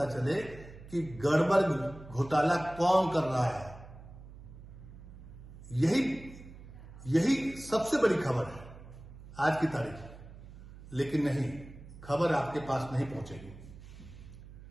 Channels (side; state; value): right; noise; hum, 16 dB below the sound